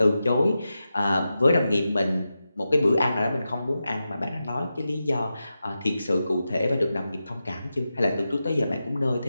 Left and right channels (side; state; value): both; inverted; correlation -0.91